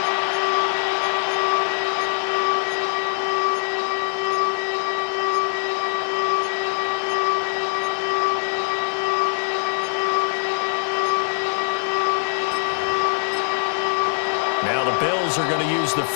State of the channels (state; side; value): silent; right; digital silence